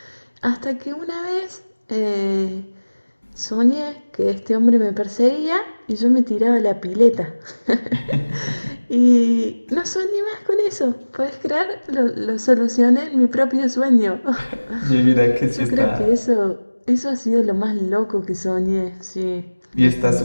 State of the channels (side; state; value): both; inverted; correlation -1.00